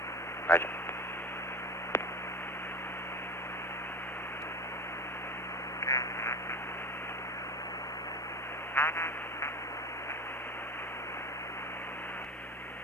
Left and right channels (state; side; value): normal; both; correlation 0.30